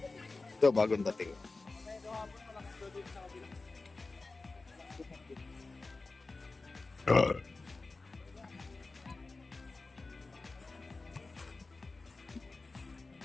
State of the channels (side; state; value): right; quieter; 3.6 dB